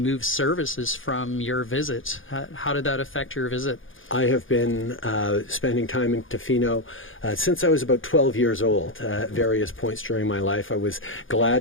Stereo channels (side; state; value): right; late; 0.58 ms